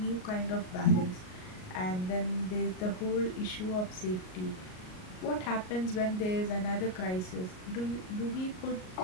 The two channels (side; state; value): right; late; 38 ms